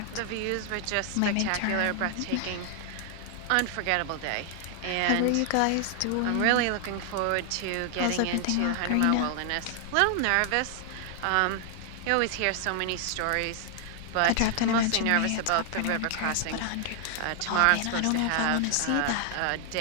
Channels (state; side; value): different; both; correlation 0.00